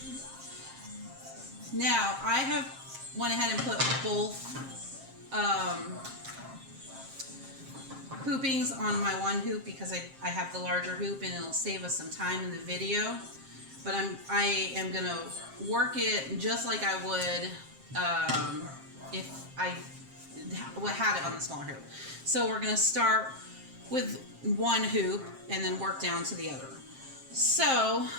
Now I have went ahead and put both hoopings on my one hoop because I have the larger hoop and it'll save us some time in the video. But I am gonna work it just like I would if I had it on the smaller hoop. So we're gonna start with one hoop and then work down to the other. So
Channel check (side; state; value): left; late; 7.5 ms